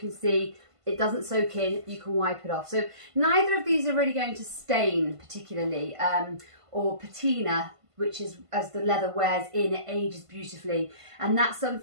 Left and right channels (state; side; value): late; left; 1.5 ms